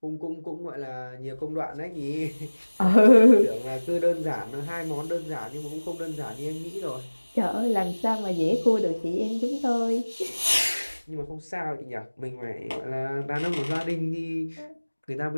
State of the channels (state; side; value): inverted; both; correlation -1.00